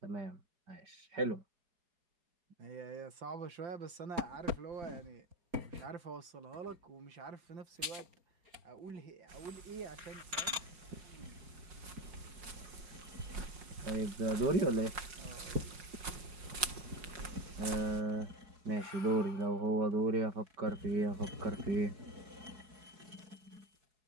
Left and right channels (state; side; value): late; left; 5.5 ms